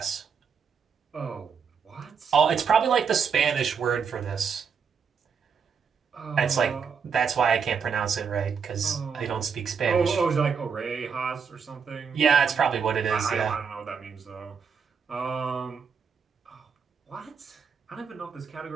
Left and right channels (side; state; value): left; quieter; 6.3 dB